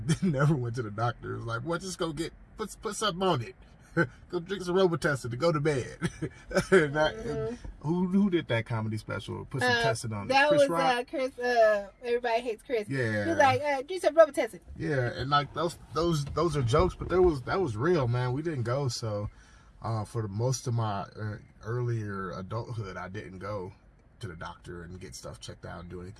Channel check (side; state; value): both; identical; correlation 1.00